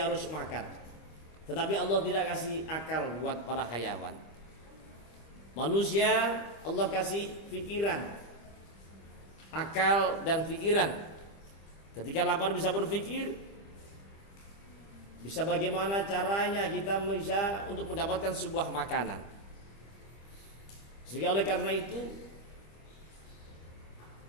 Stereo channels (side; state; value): right; late; 25 ms